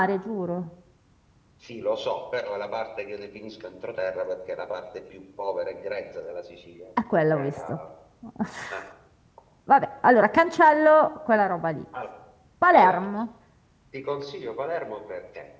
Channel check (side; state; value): both; identical; correlation 1.00